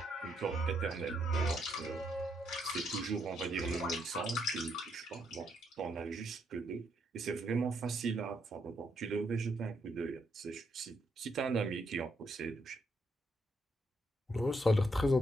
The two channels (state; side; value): normal; both; correlation 0.76